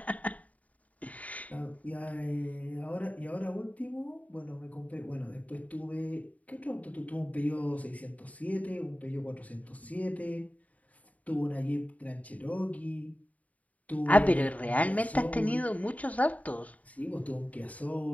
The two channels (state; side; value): late; right; 0.070 ms